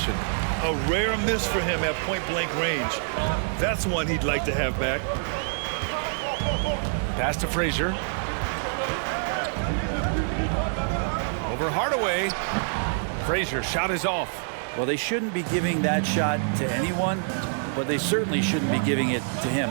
A rare miss for him at point-blank range. That's one he'd like to have back. Pass to Frazier. Over Hardaway. Frazier shot is off. Well, they shouldn't be giving that shot to anyone, but they certainly shouldn't be giving it to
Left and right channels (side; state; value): left; silent; digital silence